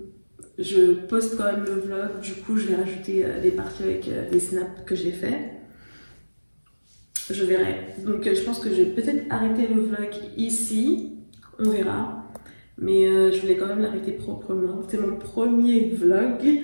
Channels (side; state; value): both; inverted; correlation -1.00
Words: je poste quand même le vlog. Du coup, je vais rajouter des parties avec des snaps que j'ai fait. Je verrai. Donc je pense que je vais peut-être arrêter le vlog ici. On verra. Mais je voulais quand même l'arrêter proprement. C'est mon premier vlog.